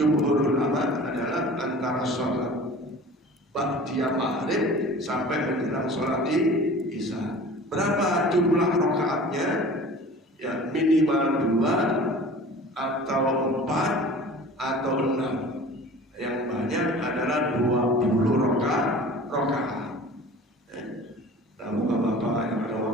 ulama adalah antara sholat ba'diyah maghrib sampai menjelang sholat isya. Berapa jumlah rakaatnya? Ya, minimal 2 atau 4 atau 6. Yang banyak adalah 20 rakaat. Nah, bapak-bapak yang ada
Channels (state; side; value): normal; both; correlation 0.42